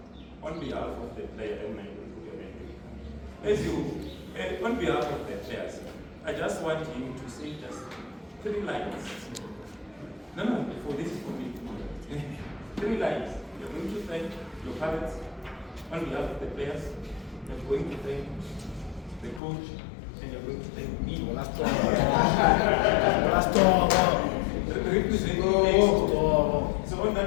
on behalf of the player, on behalf of the players, I just want him to say just 3 lines. No, for this is for me. 3 lines. You're going to thank your parents on behalf of the players. You're going to thank the coach, and you're going to thank me. So on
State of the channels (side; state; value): right; drops out; at 19.4 s